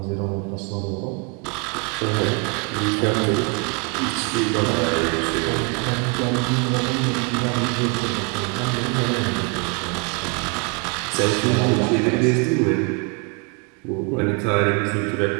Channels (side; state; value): left; quieter; 33.3 dB